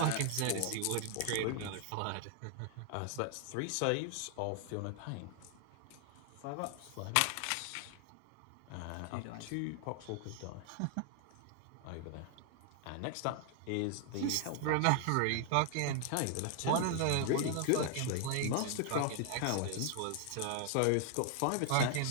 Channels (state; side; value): different; both; correlation 0.00